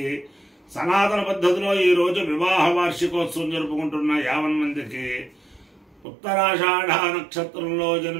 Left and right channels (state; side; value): drops out; left; at 6.1 s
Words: సనాతన పద్ధతిలో ఈ రోజు వివాహ వార్షికోత్సవం జరుపుకుంటున్న 50 మందికి, ఉత్తరాషాఢ నక్షత్రంలో